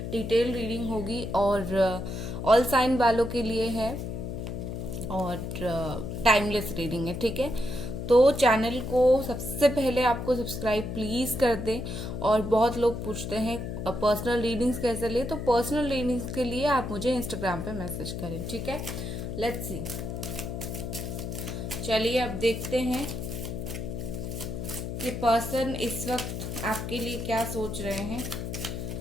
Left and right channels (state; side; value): noise; left; hum, 5 dB below the sound